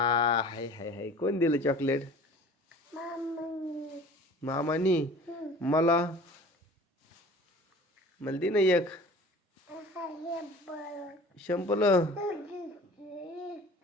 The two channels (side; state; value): both; normal; correlation 0.44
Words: हाय हाय हाय. कोण दिलं चॉकलेट? मामानी. मला मला दे ना एक. शंपल